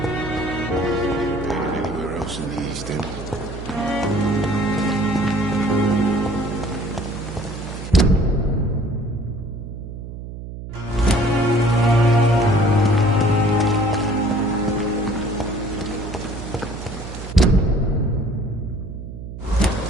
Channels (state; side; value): noise; right; hum, 10 dB below the sound